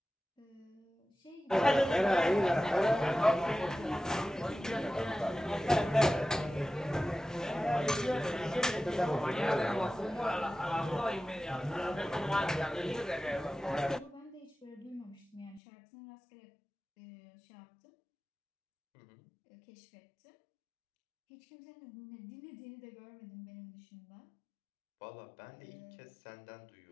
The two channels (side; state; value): right; drops out; at 15.6 s